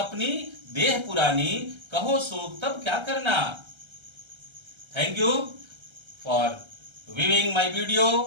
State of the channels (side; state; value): left; late; 1.3 ms